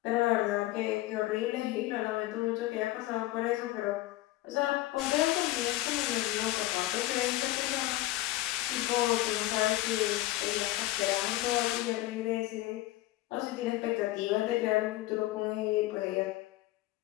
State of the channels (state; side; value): quieter; right; 17.4 dB